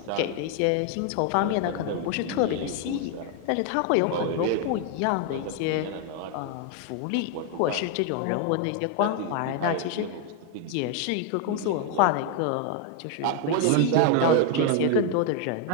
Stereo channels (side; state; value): both; different; correlation 0.01